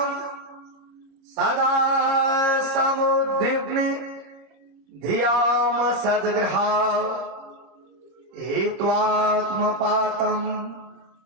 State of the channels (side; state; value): left; late; 26 ms